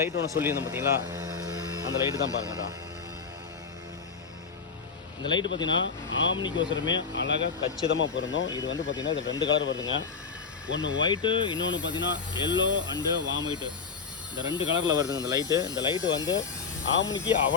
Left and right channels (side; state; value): right; quieter; 5.5 dB